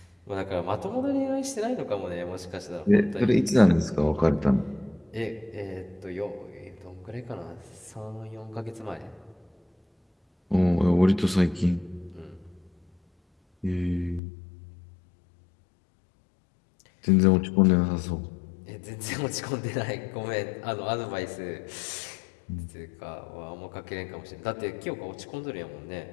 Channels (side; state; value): right; drops out; at 14.2 s